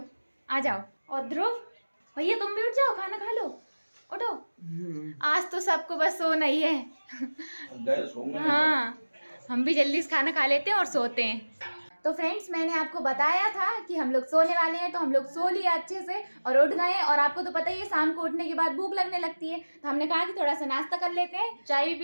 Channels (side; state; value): both; inverted; correlation -1.00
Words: आ जाओ। और ध्रुव भैया, तुम भी उठ जाओ, खाना खा लो, उठो। आज तो सबको बस सोना ही है। हाँ, हम भी जल्दी से खाना खा लेते हैं और सोते हैं। तो फ्रेंड्स, मैंने आपको बताया था कि हम लोग सोने वाले हैं, तो हम लोग सो लिया अच्छे से और उठ गए। और आपको तो पता ही है, शाम को उठने के बाद भूख लगने लगती है, तो हमने कहा कि थोड़ा सा नाश्ता कर लेते हैं। चाय भी